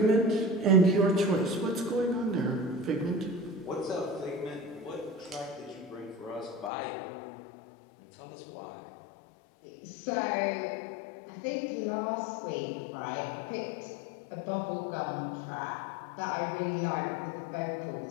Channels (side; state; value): right; drops out; at 6.7 s